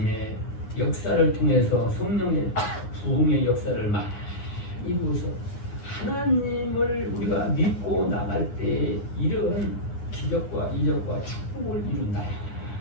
역사를 통해서 성령의 부흥의 역사를 많이 보서 하나님을 우리가 믿고 나갈 때 이런 기적과 이적과 축복을 이룬다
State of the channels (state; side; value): late; right; 9.7 ms